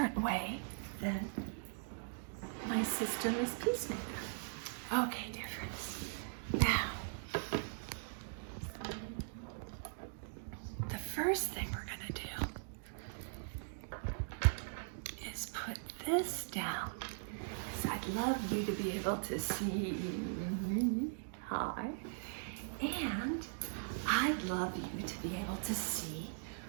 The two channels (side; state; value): left; silent; digital silence